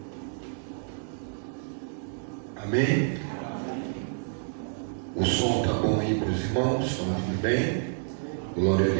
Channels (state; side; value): silent; left; 59 dB below the other